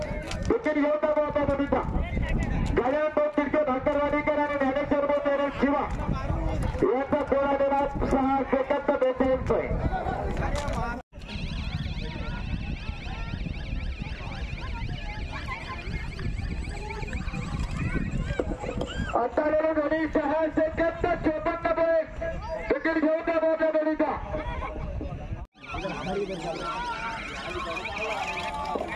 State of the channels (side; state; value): both; identical; correlation 1.00